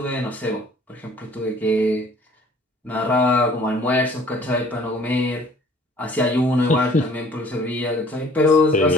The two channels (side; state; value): both; normal; correlation 0.54